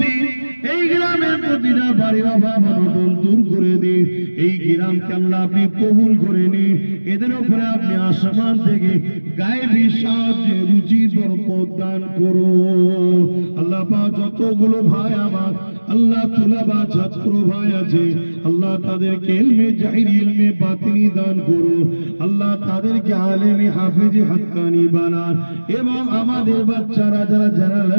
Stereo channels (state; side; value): inverted; both; correlation -1.00